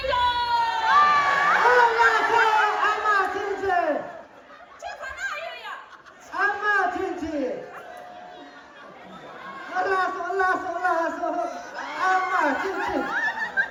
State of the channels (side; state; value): both; identical; correlation 1.00